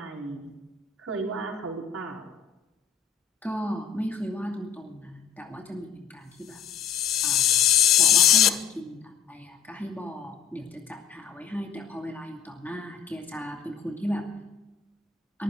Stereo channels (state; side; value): quieter; right; 7.6 dB